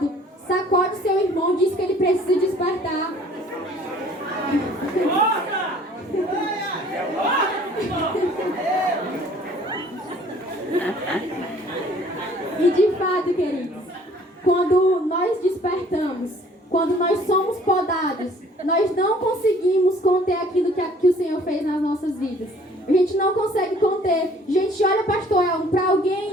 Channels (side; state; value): both; normal; correlation 0.55